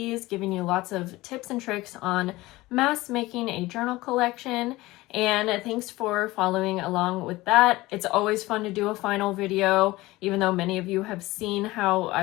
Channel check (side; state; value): right; quieter; 19.4 dB